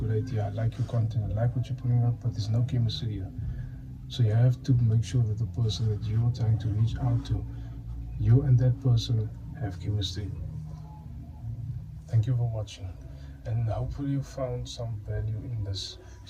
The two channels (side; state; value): both; identical; correlation 1.00